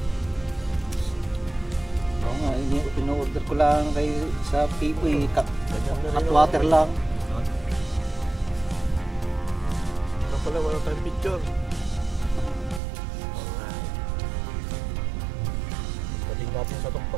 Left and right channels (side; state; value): left; drops out; at 12.8 s